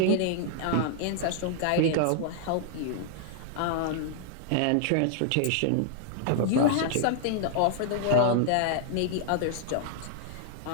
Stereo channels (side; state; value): both; different; correlation 0.00